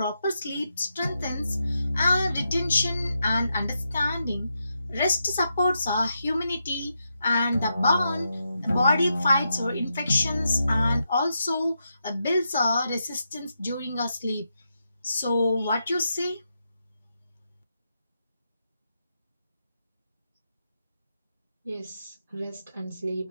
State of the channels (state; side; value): inverted; both; correlation -0.85